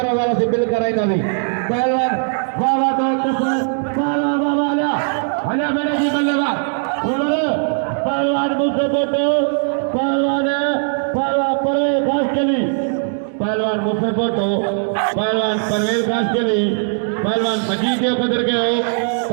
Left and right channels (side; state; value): left; silent; 67 dB below the other